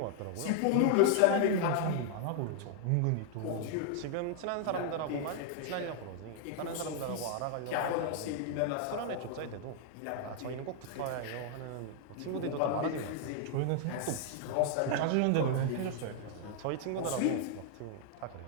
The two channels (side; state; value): both; different; correlation 0.00